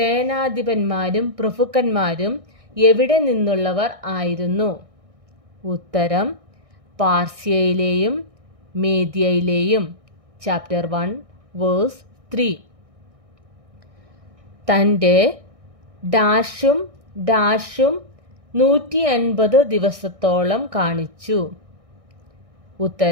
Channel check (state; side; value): late; left; 1.6 ms